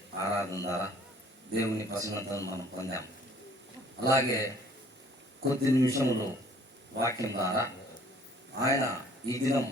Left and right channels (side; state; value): both; normal; correlation 0.56